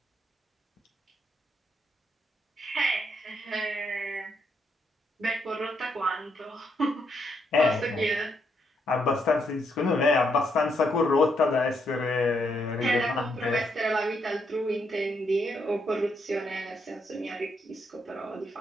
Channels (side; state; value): both; normal; correlation 0.77